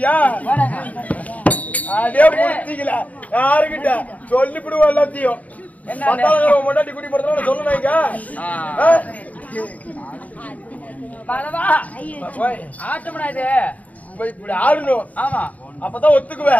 அதே முடிச்சிக்கல யாருக்கிட்ட சொல்லிவிடுவோம் எல்லாத்தையும். பொண்டாட்டி குடி போறதுனால சொல்லணுங்க. ஆட்டம்டா இது, இப்படி ஆடணும். ஆமா, அப்பதான்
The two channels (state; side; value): late; right; 0.071 ms